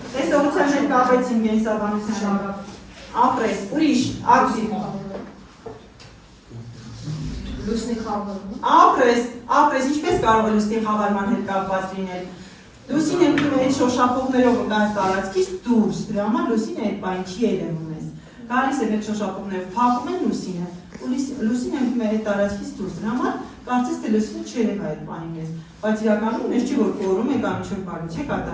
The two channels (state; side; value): identical; both; correlation 1.00